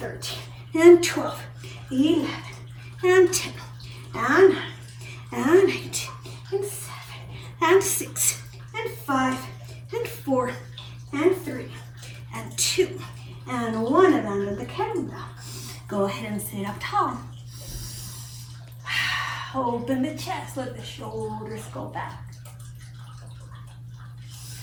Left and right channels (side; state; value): both; identical; correlation 1.00